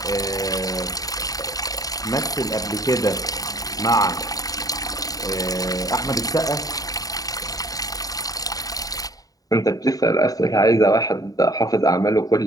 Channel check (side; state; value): right; late; 0.18 ms